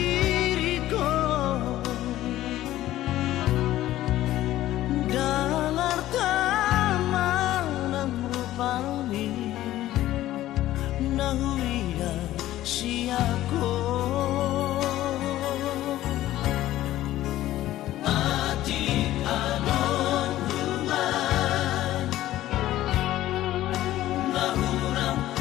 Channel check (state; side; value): quieter; right; 14.5 dB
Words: dalar taman rupani nahuia siako mati anon rumah nahurang